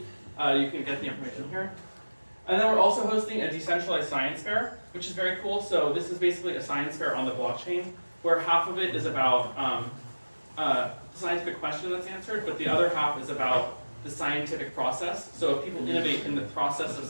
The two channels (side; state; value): both; inverted; correlation -1.00